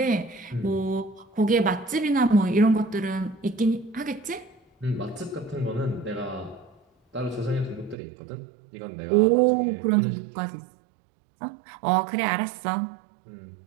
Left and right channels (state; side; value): drops out; left; at 8.0 s